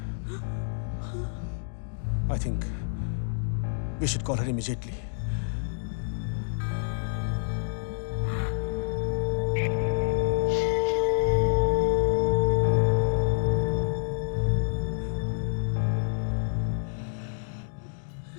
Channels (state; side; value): silent; right; digital silence